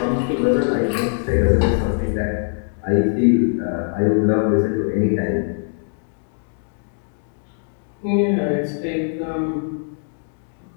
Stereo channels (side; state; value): right; silent; digital silence